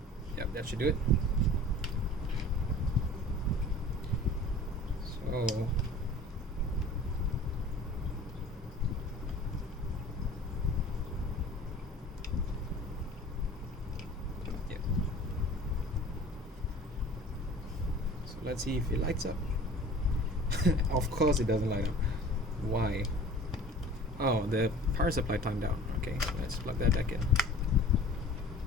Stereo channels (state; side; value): normal; both; correlation 0.45